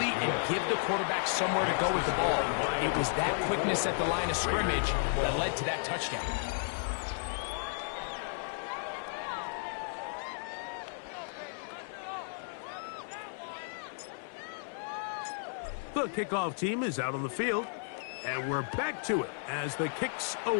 and give the quarterback somewhere to go with the ball. It was that quickness at the line of scrimmage that led to that touchdown. The kickoff team is out on the field, and we're back to it as the kick's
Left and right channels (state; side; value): silent; right; 55 dB below the other